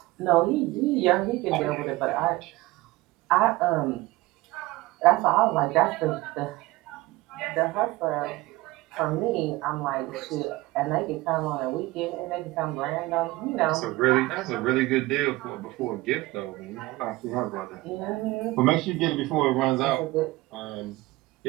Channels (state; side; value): quieter; left; 19.7 dB